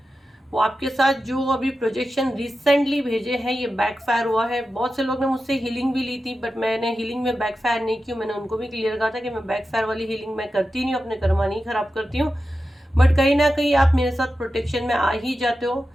वो आपके साथ जो अभी प्रोजेक्शन रिसेंटली भेजे हैं ये बैकफायर हुआ है। बहुत से लोग ने मुझसे हीलिंग भी ली थी, बट मैंने हीलिंग में बैकफायर नहीं की। मैंने उनको भी क्लियर कहा था कि मैं बैकफायर वाली हीलिंग मैं करती नहीं हूँ, अपने कर्मा नहीं खराब करती हूँ। बट कहीं ना कहीं आप मेरे साथ प्रोटेक्शन में आ ही जाते हो।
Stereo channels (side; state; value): both; normal; correlation 0.92